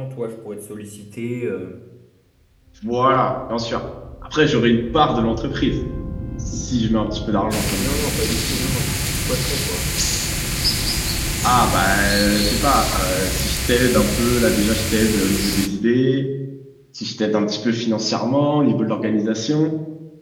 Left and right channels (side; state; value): both; identical; correlation 1.00